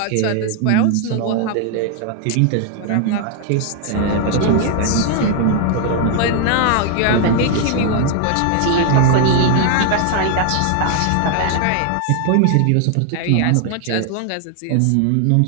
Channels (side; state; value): both; different; correlation 0.00